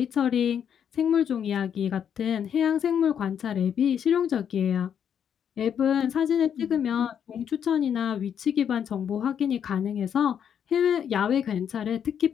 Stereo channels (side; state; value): right; quieter; 8.4 dB